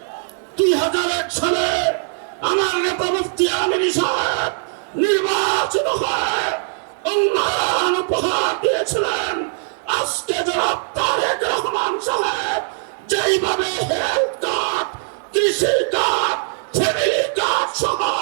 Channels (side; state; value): left; silent; digital silence